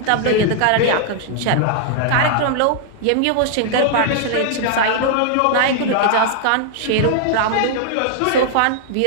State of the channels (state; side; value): different; both; correlation -0.01